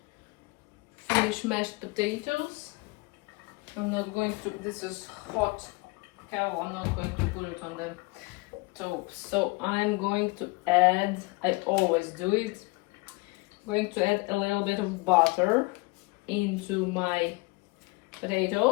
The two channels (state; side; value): quieter; right; 25.5 dB